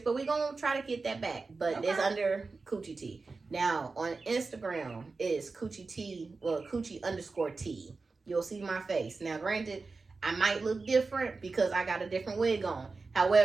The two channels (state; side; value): quieter; left; 4.0 dB